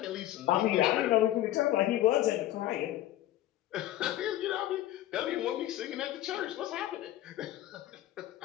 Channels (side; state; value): right; quieter; 14.1 dB